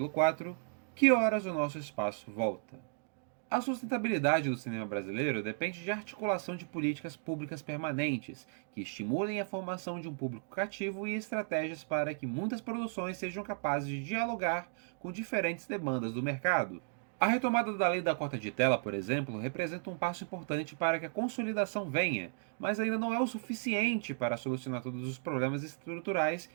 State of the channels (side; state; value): left; silent; digital silence